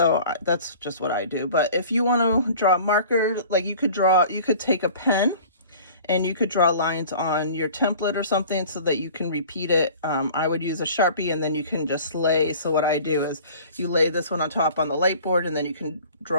that's just what I do. But if you want to draw a marker, like you could take a pen and you could draw lines on your template or something so that you can repeat it. I would use a Sharpie, and then you can just lay. So what I do is you lay this one on top on the light board, and then you can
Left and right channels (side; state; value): both; inverted; correlation -0.45